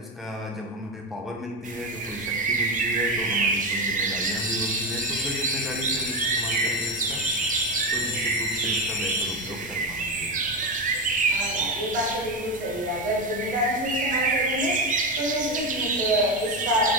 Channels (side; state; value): both; normal; correlation 0.15